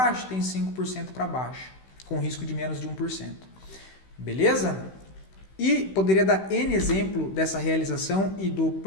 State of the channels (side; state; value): right; late; 16 ms